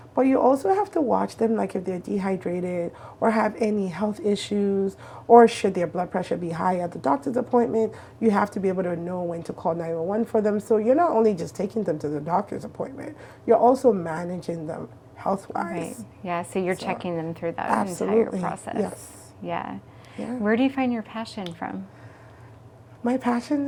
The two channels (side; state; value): both; identical; correlation 1.00